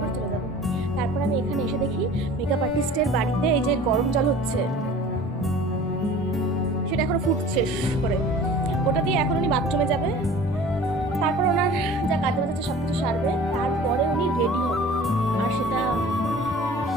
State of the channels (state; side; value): normal; both; correlation 0.44